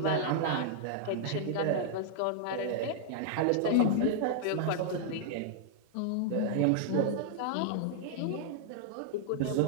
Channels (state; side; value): different; both; correlation -0.01